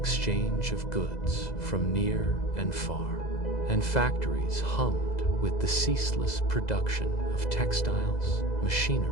of goods from near and far, and factories hummed with the ceaseless production of textiles,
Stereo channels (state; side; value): late; right; 2.0 ms